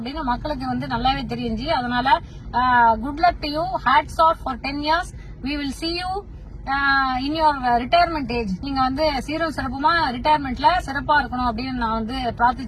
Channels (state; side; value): identical; both; correlation 1.00